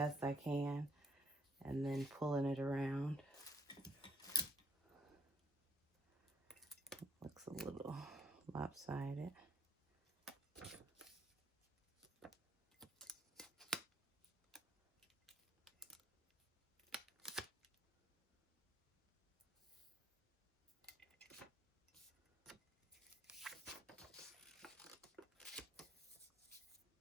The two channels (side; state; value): both; normal; correlation 0.67